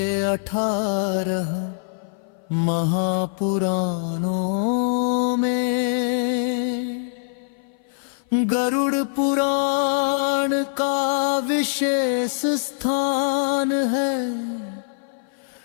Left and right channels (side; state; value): right; silent; 56 dB below the other